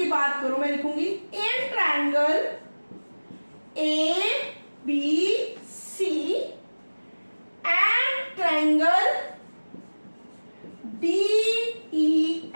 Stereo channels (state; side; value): inverted; both; correlation -1.00